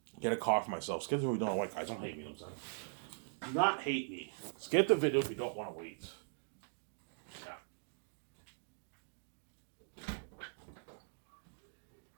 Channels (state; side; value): silent; left; digital silence